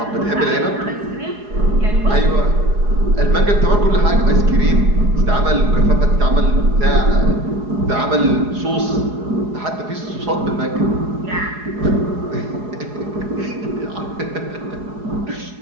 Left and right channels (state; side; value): late; left; 4.8 ms